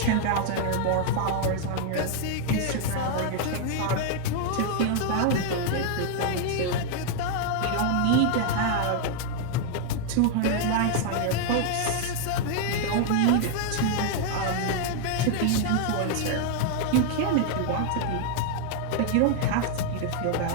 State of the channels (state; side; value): different; both; correlation 0.00